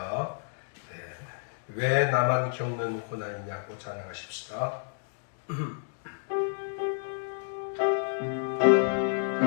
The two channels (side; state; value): right; silent; digital silence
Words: 네. 왜 나만 겪는 고난이냐고 찬양하십시다.